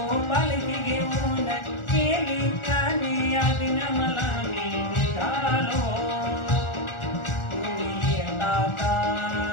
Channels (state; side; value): late; right; 1.4 ms